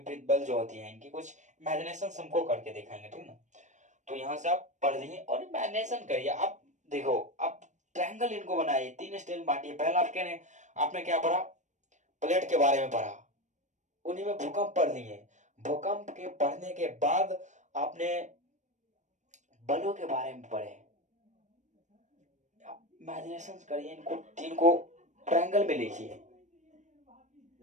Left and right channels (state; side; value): late; left; 0.35 ms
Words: बल जो होती है इनकी कुछ इमेजिनेशन हमको करके दिखाएंगे, ठीक ना। तो यहाँ से आप पढ़ लीजिए और इमेजिनेशन करिए। आप देखो, आप ट्रायंगल इनको बनाइए, 3 स्टेज में बांटिए। पहला आपने क्या पढ़ा, प्लेट के बारे में पढ़ा, उन्हीं में भूकंप पढ़ लिए। भूकंप के पढ़ने के बाद आपने बलों के बारे में पढ़े, इमेजिनेशन करिए, इनको 3 को ट्रायंगल में लिखिए,